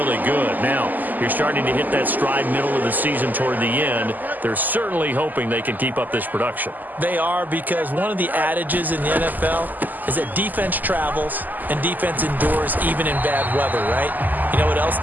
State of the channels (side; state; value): left; late; 0.084 ms